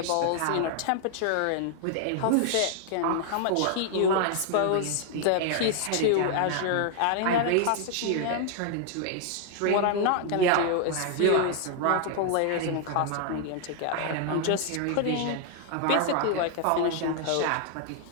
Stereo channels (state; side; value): different; both; correlation 0.00